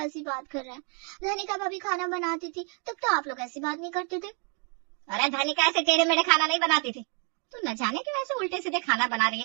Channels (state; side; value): quieter; left; 39.2 dB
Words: बात कर रहे हैं। धनिका भाभी खाना बनाती थी तब तो आप लोग ऐसी बात नहीं करते थे। अरे धनिका ऐसे टेढ़े मेढ़े खाना नहीं बनाती थी, तू न जाने क्यों ऐसे उल्टे सीधे खाना बना रही